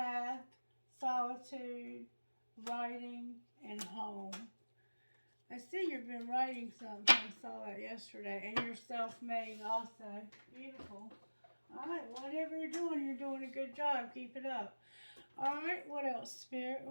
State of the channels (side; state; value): both; inverted; correlation -1.00